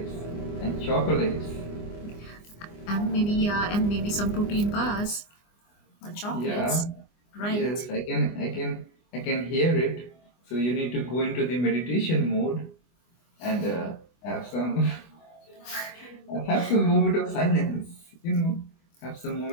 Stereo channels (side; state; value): right; late; 24 ms